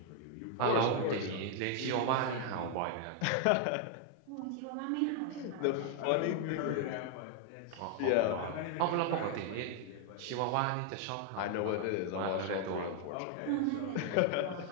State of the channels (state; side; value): different; both; correlation 0.00